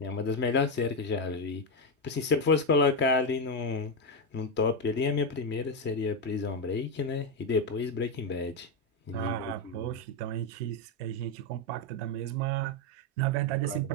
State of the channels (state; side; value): normal; both; correlation 0.07